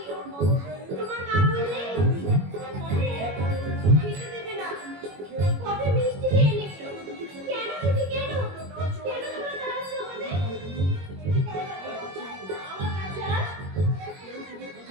তোমার মা বললে খেতে দেবে না। কবে মিষ্টি খেয়ে নিবি। কেন দিদি, কেন? কেন তোমরা তাড়াচ্ছ আমাদের? আমার কাছে আস।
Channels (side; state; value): left; late; 21 ms